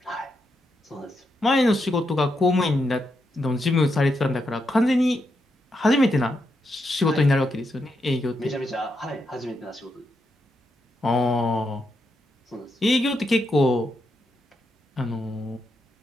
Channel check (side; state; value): both; normal; correlation 0.83